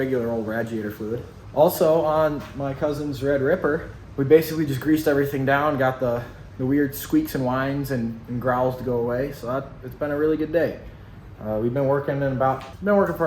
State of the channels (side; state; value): both; identical; correlation 1.00